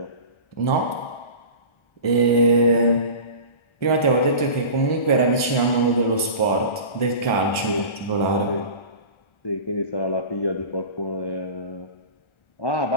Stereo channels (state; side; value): late; right; 1.3 ms